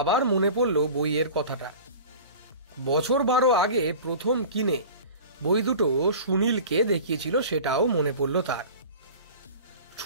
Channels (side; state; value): both; inverted; correlation -0.38